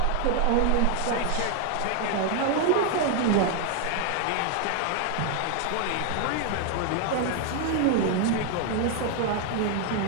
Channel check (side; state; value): both; different; correlation 0.01